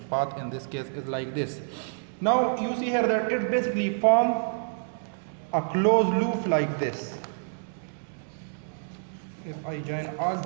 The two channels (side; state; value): left; silent; digital silence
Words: path in this case is like this. Now you see here that it basically form a closed loop like this. If I join all